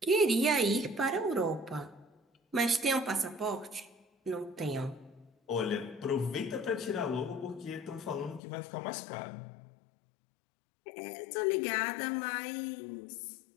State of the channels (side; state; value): right; drops out; at 8.4 s